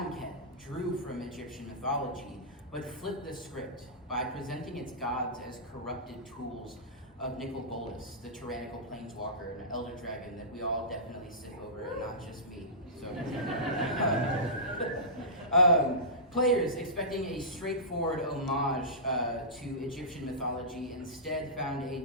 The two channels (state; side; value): normal; both; correlation -0.20